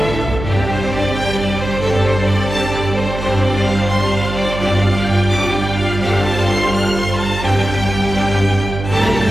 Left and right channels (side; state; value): right; noise; hum, 7 dB below the sound